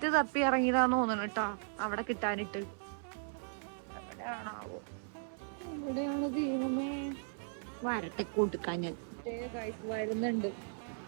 തപ്പി ഇറങ്ങിയതാന്ന് തോന്നണം കേട്ടാ അവിടെ കിട്ടാനിട്ട്. എവിടെയാണാവോ? എവിടെയാണ് ദൈവമേ? വരട്ടെ കൊടുക്കാൻ ഞാൻ വരുന്നുണ്ട്.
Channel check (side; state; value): left; silent; 53 dB below the other